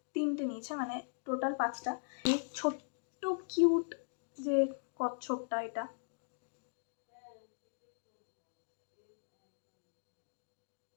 3টে নিয়েছে, মানে টোটাল 5টা। এই ছোট্ট কিউট যে কচ্ছপটা, এটা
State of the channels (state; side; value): silent; right; digital silence